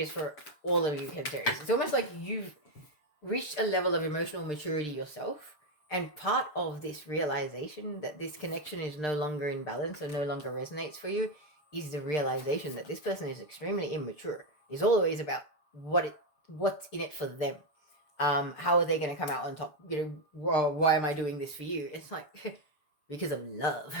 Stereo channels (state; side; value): late; right; 7.1 ms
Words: for all of you Cancerians. It's almost like you've reached a level of emotional maturity yourself. And part of this realization that this connection is no longer in balance or no longer resonates for you is the realization that this person is extremely immature. It's always about what's in it for them. How are they going to come out on top? Why am I doing this for you? It's like, because of love.